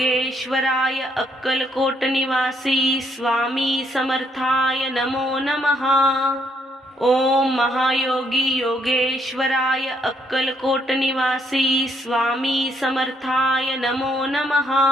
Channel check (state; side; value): normal; both; correlation 0.71